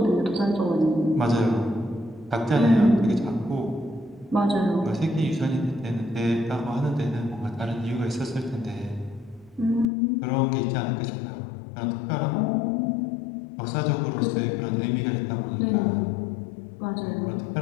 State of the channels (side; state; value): right; drops out; at 9.9 s